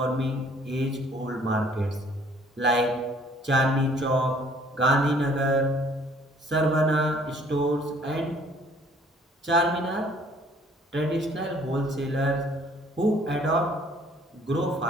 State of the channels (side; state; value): both; normal; correlation 0.58